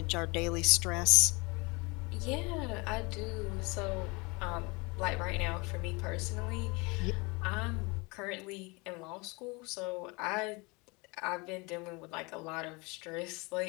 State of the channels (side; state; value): right; quieter; 27.5 dB